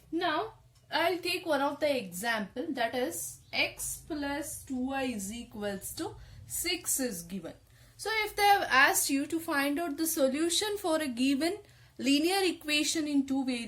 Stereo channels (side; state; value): both; identical; correlation 1.00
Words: Now I'll take one of the example, that is x plus 2y is equals to 6 is given. So if they have asked you to find out the solution for a given linear equation in two